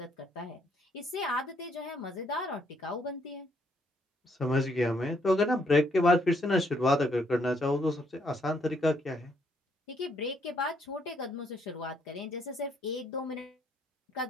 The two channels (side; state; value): both; normal; correlation 0.71